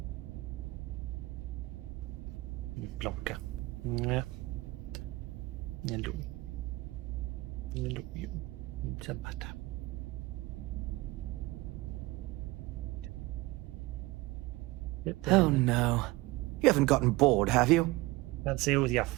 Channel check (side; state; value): left; quieter; 20.6 dB